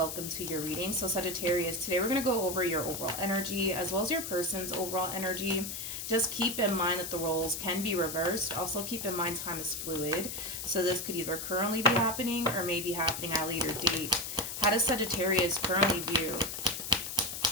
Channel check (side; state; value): left; noise; hiss, 6 dB below the sound